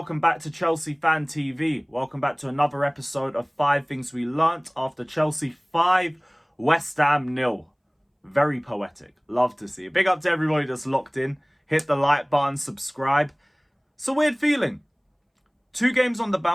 back to Chelsea Fan TV. Welcome back to another episode of 5 Things We Learnt after Chelsea 5, West Ham 0. Very poetic. Love to see it. Big up to everybody that's locked in. Hit the like button, subscribe. It's a weird feeling. 2 games on the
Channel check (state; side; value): identical; both; correlation 1.00